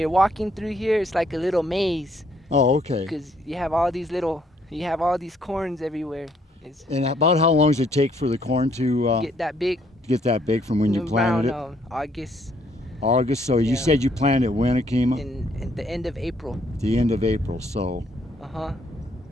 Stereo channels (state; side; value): normal; both; correlation 0.68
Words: walking through here, it's like a little maze Oh, okay. because you have all these corns everywhere. It's And about how long does it take for the corn to get that big get that big from when you planted around it? August August. So you Yeah. said you planted when, Akima? in the end of April. The end of April. So Uh-huh.